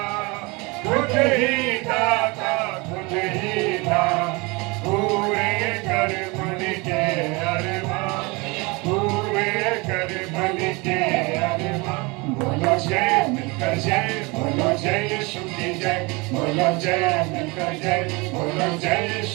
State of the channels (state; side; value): quieter; left; 26.5 dB